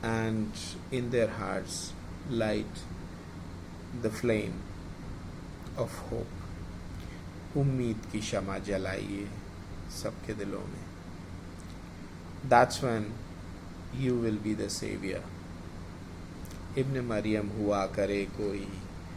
and in their hearts light the flame of hope. उम्मीद की शमा जलाइए सबके दिलों में. That's when you will be the savior. Ibn-e-Mariyam हुआ करे कोई,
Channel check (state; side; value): identical; both; correlation 1.00